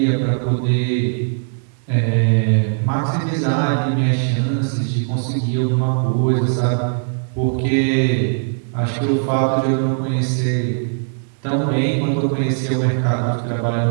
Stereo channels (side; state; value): left; silent; digital silence